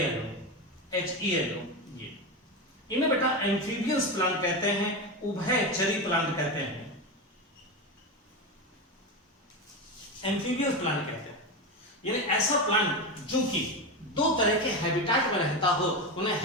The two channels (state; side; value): normal; both; correlation 0.17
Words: ये इन्हें बेटा एम्फीबियस प्लांट कहते हैं, उभयचरी प्लांट कहते हैं, एम्फीबियस प्लांट कहते हैं। यानी ऐसा प्लांट जो कि 2 तरह के हैबिटेट में रहता हो, उन्हें